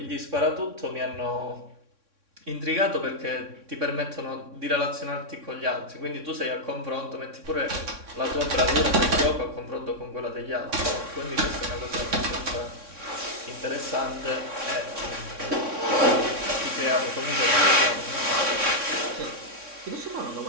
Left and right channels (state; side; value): late; left; 3.6 ms